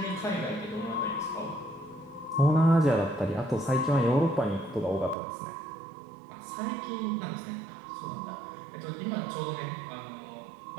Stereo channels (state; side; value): drops out; left; at 5.2 s